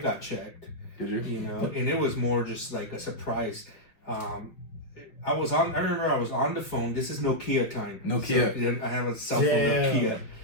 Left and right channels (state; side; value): late; right; 5.2 ms